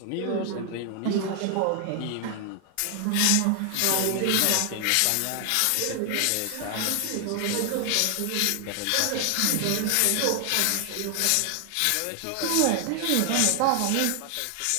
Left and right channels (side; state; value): both; different; correlation 0.00